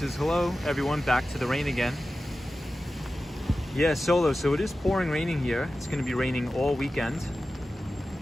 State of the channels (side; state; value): both; normal; correlation 0.94